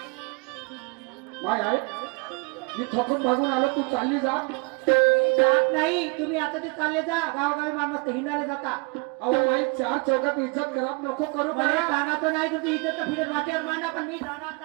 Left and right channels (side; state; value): left; quieter; 29.7 dB